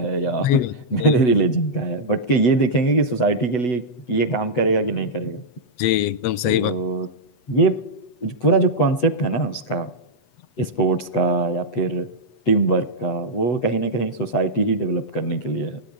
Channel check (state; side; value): late; right; 8.1 ms